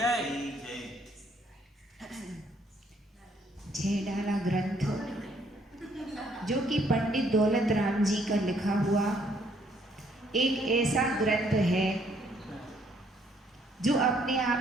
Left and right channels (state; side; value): normal; both; correlation 0.67